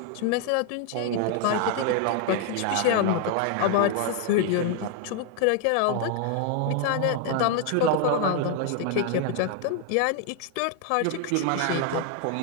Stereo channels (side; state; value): both; different; correlation 0.00